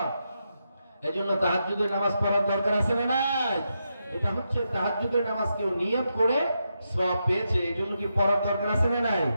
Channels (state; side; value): inverted; both; correlation -0.85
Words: এজন্য তাহাজ্জুদের নামাজ পড়ার দরকার আছে না নাই? এটা হচ্ছে তাহাজ্জুদের নামাজ কেউ নিয়ত করে সওয়াব পেয়েছে, এজন্য কি পড়ার দরকার আছে না নাই?